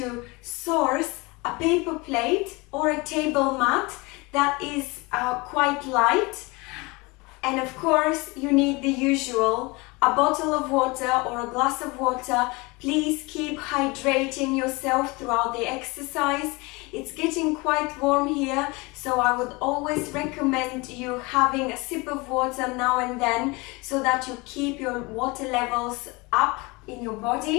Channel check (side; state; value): right; quieter; 25.5 dB